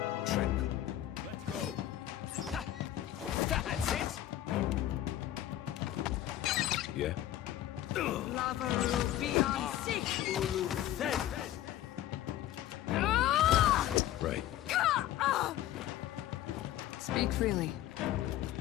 Let's go! That's it! Yeah? Right. Speak freely.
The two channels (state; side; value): quieter; right; 13.1 dB